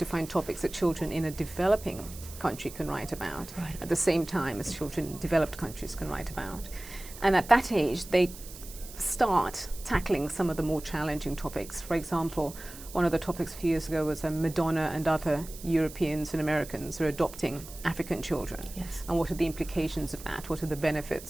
find topics that children in a developing country can write about at the same time as children in developed countries can write about. And at that age, they start tackling some of the more challenging topics. For example, one of the topics a few years ago was Madonna and other Europeans and Americans are adopting African children. Yes. And what are the implications of that? What are the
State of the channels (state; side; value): noise; right; hiss, 15 dB below the sound